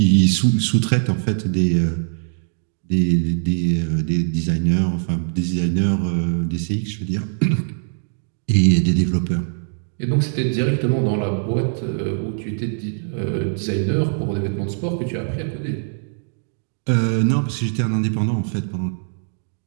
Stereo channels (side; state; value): left; silent; digital silence